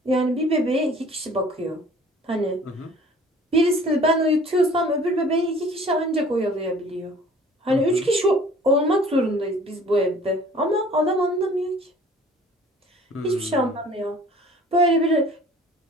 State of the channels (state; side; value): normal; both; correlation 0.51